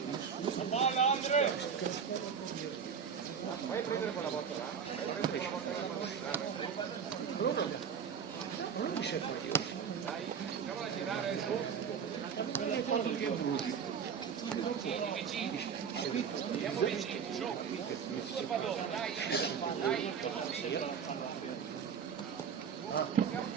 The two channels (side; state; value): left; quieter; 7.0 dB